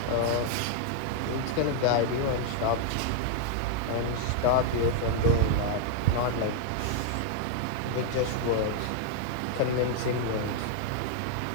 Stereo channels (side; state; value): both; different; correlation 0.00